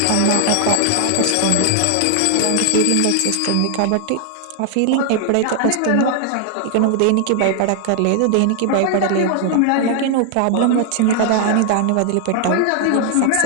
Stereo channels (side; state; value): both; different; correlation 0.00